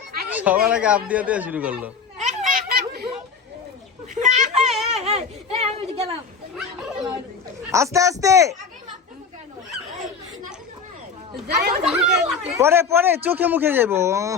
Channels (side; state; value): right; quieter; 5.4 dB